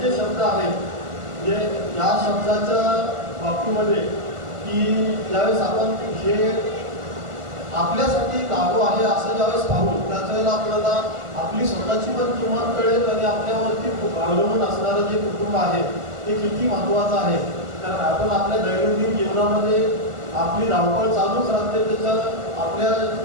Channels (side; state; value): left; late; 1.4 ms